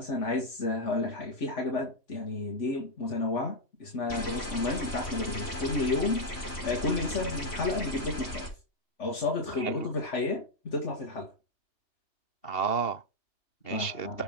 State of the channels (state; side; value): late; right; 3.1 ms